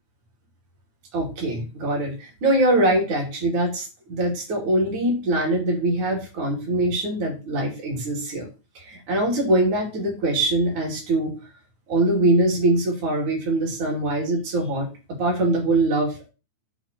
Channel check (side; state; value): left; late; 9.1 ms